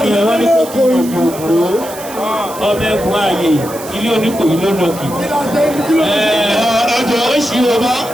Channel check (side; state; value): right; noise; hiss, 14 dB below the sound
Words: Ìyẹ̀wò ní kókó ìgbòho ọmọ ẹ̀kún ààyè ilé oníkòyí lónàkì. Ọjọ́ oṣù ọba